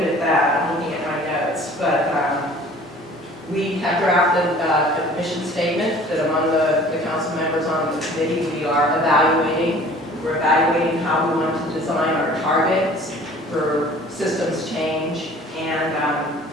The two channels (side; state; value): both; normal; correlation 0.49